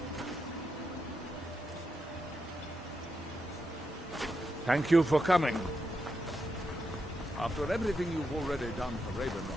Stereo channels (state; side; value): normal; both; correlation 0.85